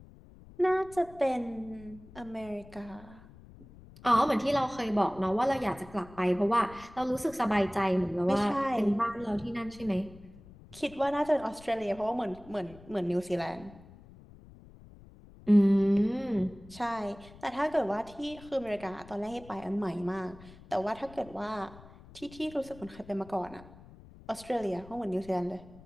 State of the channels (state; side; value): noise; left; rumble, 20 dB below the sound